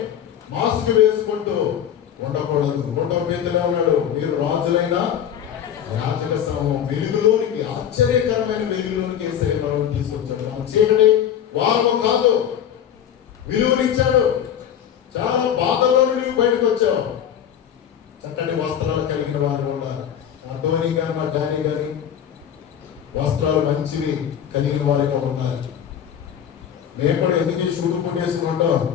మాస్క్ వేసుకుంటూ ఉండకూడదు. 1వ పేతురులో ఉన్నాడు, మీరు రాజులైన యాజక సమూహం వెలుగులోనికి, ఆశ్చర్యకరమైన వెలుగులోనికి యేసయ్య తీసుకొచ్చాడు. మన చీకటి వారు కాదు, విలువనిచ్చాడు. చాలా బాధలో నుండి బయటకు వచ్చావు. చక్కటి వస్త్రాలు కలిగిన వారు ఉన్నారు. మా ధోని గాని మా డానీ గాని వస్త్రాలు మంచివి కలిగిన వారిగా ఉన్నారు. మేము కూడా ఎందుకు ఈ షూటు పుట్టి చేసుకుంటాం?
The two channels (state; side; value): quieter; right; 9.3 dB